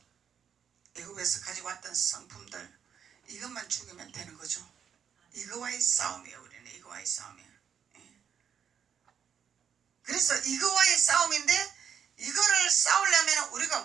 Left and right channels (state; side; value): quieter; left; 7.9 dB